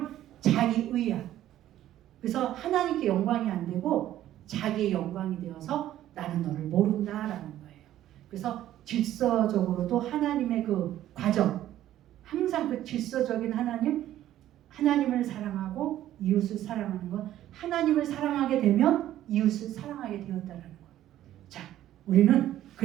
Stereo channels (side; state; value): left; quieter; 12.9 dB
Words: 자기의야. 그래서 하나님께 영광이 안 되고 자기의 영광이 되어서 나는 너를 모른다라는 거예요. 그래서 질서적으로도 하나님의 그 과정, 항상 그 질서적인 하나님을 사랑하고 이웃을 사랑하는 건 하나님을 사랑하게 되면 이웃을 사랑하게 되었다는 거예요. 자, 우리는